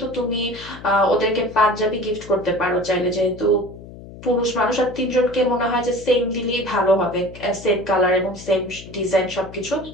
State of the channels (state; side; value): noise; left; hum, 16 dB below the sound